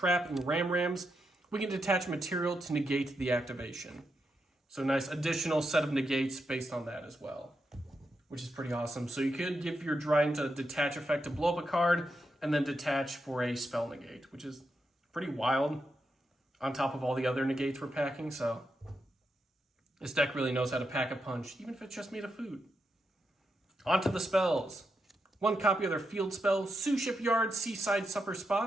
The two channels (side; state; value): both; normal; correlation 0.84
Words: in Rams, we can detach material to negate the activation. So nice additional set of negates based on that as well, which is pretty awesome. So you could give your Dryden a detach effect to blow up a card, and then detach for a spell negate, which is pretty wild on top of all the other negates we're packing. So this deck really knows how to pack a punch, even if it's just made of food. On to the spells. 1 copy of their field spell, Suship Yard, Seaside Supper